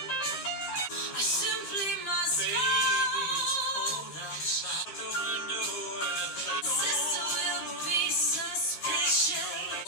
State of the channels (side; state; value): right; late; 13 ms